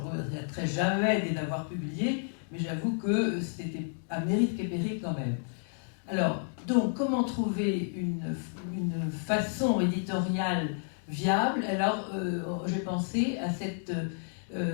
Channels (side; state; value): right; silent; digital silence